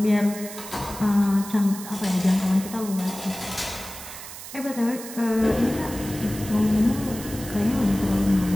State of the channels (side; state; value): right; noise; hiss, 12 dB below the sound